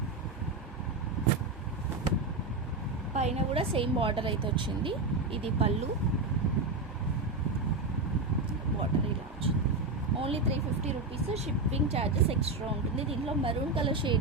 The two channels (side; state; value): left; quieter; 3.2 dB